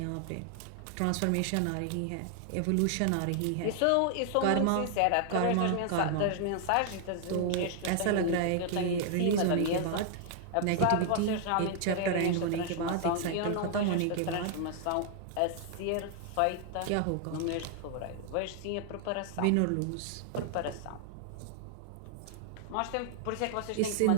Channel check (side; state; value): both; different; correlation 0.00